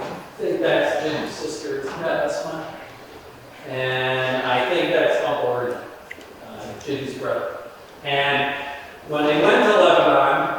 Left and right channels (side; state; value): both; identical; correlation 1.00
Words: think that's Jim's sister. Yeah, that's mine. And I think that's Uncle Ernie, Jim's brother. And when they went to